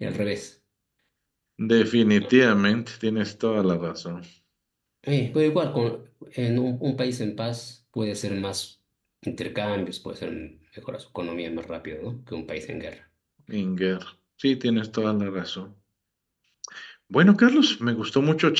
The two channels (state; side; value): identical; both; correlation 1.00